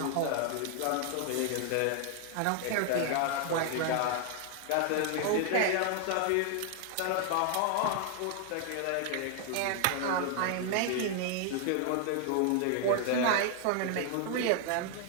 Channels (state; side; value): different; both; correlation 0.00